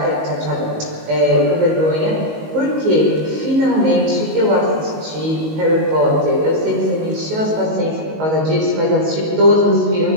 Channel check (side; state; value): left; late; 19 ms